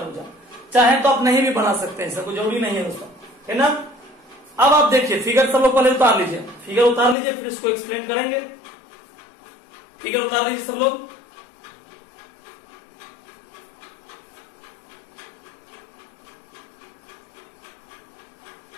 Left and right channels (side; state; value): right; drops out; at 7.2 s